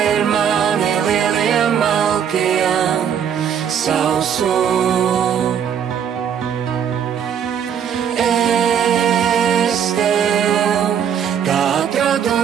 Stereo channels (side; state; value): left; quieter; 8.3 dB